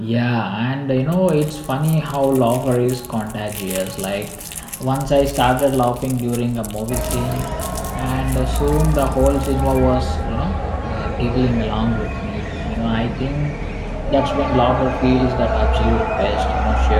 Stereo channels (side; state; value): both; identical; correlation 1.00